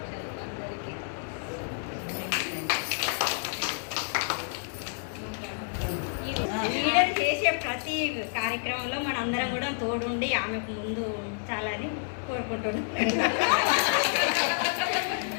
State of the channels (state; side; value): silent; right; digital silence